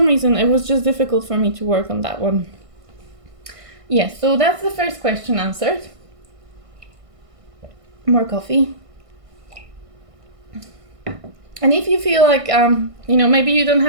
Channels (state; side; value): late; left; 1.5 ms